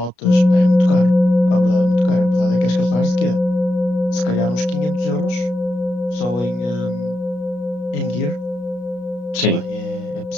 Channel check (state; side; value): late; right; 33 ms